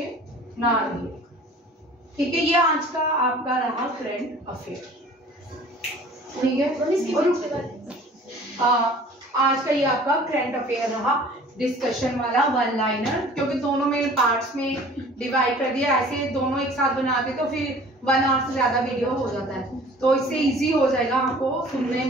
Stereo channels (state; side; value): normal; both; correlation 0.48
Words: ना रहे। ठीक है, ये आज का आपका रहा करंट अफेयर। ठीक है, आज का ये आपका करंट अफेयर रहा, डिस्कशन वाला वन लाइनर, क्योंकि दोनों में पार्ट्स में डिवाइड कर दिया। ऐसे दोनों एक साथ बनाते तो फिर 1 आवर से ज्यादा वीडियो हो जाता है, तो इससे इजी हो जाएगा आपको सुनने